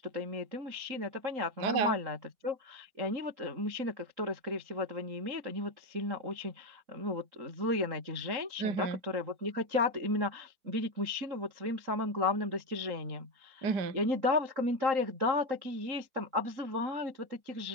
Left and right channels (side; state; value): left; late; 3.8 ms